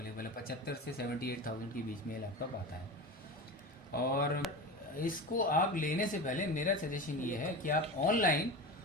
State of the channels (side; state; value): both; normal; correlation 0.28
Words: है। 75 से 78,000 के बीच में ये लैपटॉप आता है। और इसको आप लेने से पहले मेरा सजेशन ये है कि आप ऑनलाइन